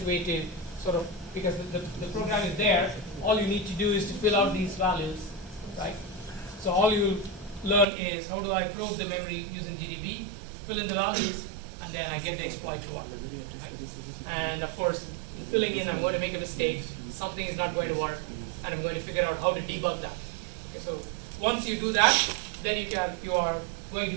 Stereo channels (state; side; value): drops out; left; at 7.9 s